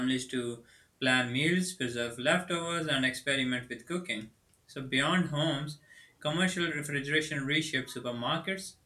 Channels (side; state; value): both; identical; correlation 1.00